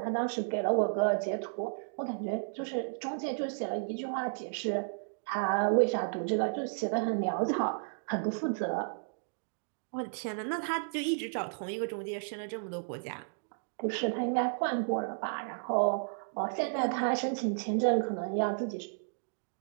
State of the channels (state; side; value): silent; left; digital silence